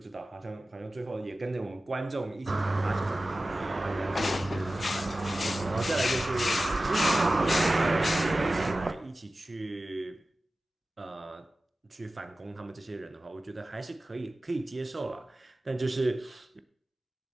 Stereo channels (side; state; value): both; normal; correlation 0.95